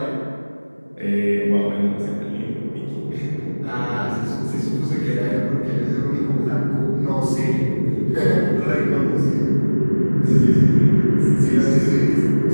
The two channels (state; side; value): inverted; both; correlation -1.00